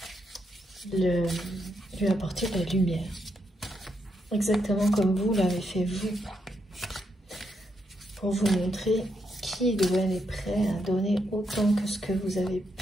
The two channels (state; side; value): normal; both; correlation 0.80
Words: lui apporter de la lumière. Exactement comme vous l'avez fait vous. Pour vous montrer qui ou elle est prêt à donner autant que ce que vous avez